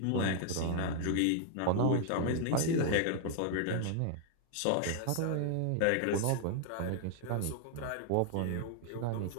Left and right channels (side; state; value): both; different; correlation 0.00